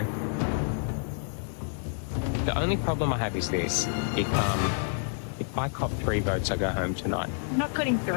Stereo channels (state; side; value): silent; right; digital silence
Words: The only problem I have is this. If I cop 3 votes, I go home tonight. I'm not getting